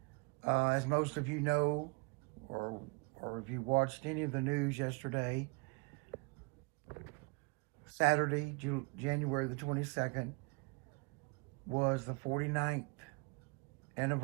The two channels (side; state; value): left; quieter; 28.5 dB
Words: As most of you know, or or if you watched any of the news yesterday, Saturday, January the 22nd, was the 49th